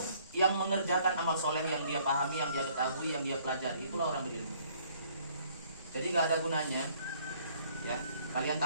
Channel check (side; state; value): both; inverted; correlation -0.61